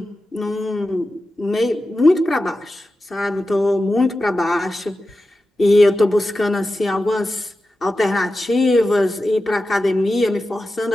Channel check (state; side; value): normal; both; correlation 0.93